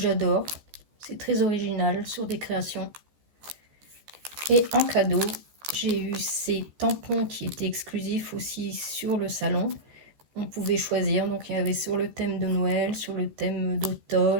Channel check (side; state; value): left; late; 14 ms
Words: C'est très original sur des créations. Et en cadeau, j'ai eu ces tampons qui étaient exclusifs aussi sur le salon. On pouvait choisir, donc il y avait sur le thème de Noël, sur le thème